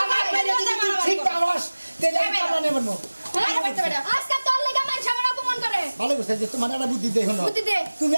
আমার মেরে দিকে ঠিক পারস তেলে কামলা নিয়ে মারমু আজকে তোর লাগা মান সামনে অপমান করে ভালো করছিস যে তোমার একটা বুদ্ধি দে হলো বুদ্ধি দে তুমি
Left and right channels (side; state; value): both; inverted; correlation -1.00